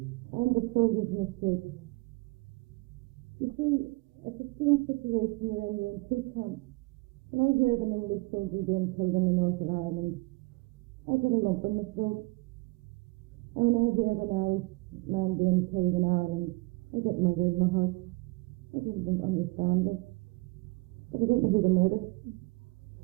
And the soldiers in the street. You see, it's a strange situation you're in two camps. When I hear of an English soldier being killed in the north of Ireland, I get a lump in my throat. And when I hear of an Irish man being killed in Ireland, I get murdered in my heart. I don't understand this. But I don't know who to murder.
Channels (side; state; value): left; quieter; 25.9 dB